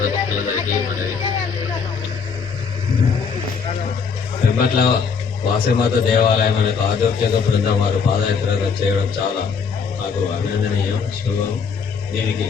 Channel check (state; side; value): quieter; right; 5.8 dB